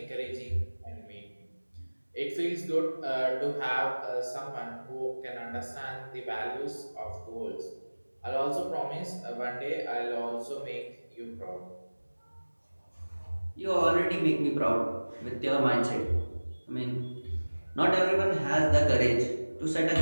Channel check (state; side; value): inverted; both; correlation -1.00